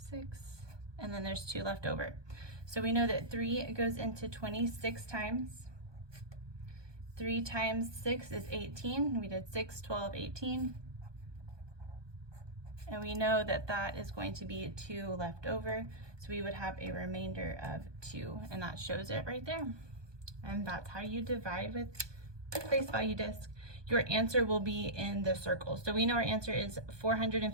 6, and then there's 2 left over. So we know that 3 goes into 26 times. 3 times 6 is 18. We did 6, 12, 18. And we know that that is going to be 2 left over. So we would have a remainder of 2, and that shows it right there. And that's how you divide with place value disc. Your answer will be in the circle. So we know our answer is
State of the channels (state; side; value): late; left; 1.2 ms